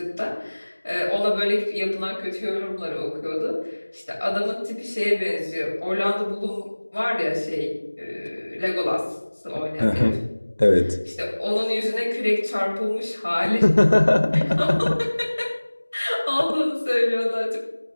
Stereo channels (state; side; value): inverted; both; correlation -1.00